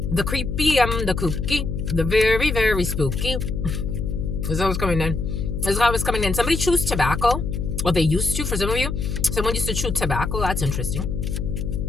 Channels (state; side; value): noise; left; hum, 3 dB below the sound